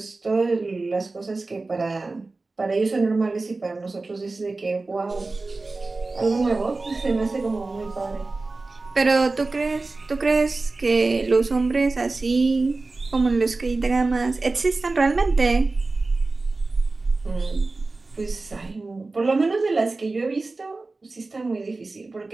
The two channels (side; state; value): left; quieter; 3.5 dB